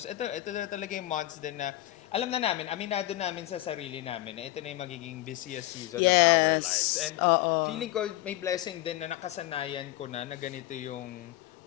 ito na talaga yung months din na alam na namin, aminado namin sa sarili namin na ito na yung magiging busiest season of our Yes. lives. And Oo. feeling ko may blessing din na nakasanayan ko na ganito yung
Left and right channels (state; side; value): quieter; right; 16.3 dB